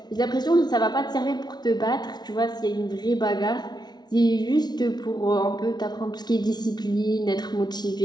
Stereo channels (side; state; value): right; late; 0.20 ms